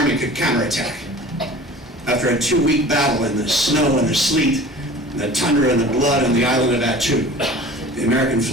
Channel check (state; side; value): normal; both; correlation 0.42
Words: could counterattack. After a 2-week battle in the snow and the sleet, the tundra and the blood on the island of Attu, the American